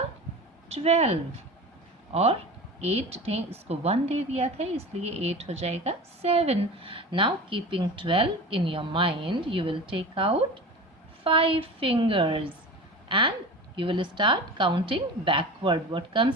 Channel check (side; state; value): both; normal; correlation 0.33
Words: 12, और 8 ने इसको 1 दे दिया था, इसलिए 8 हो जाएगा 7. Now keeping 12 in your mind, you will take out 5 fingers and you will start counting backward. What